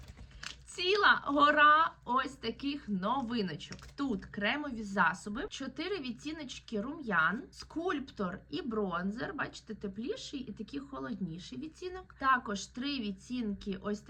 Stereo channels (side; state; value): both; identical; correlation 1.00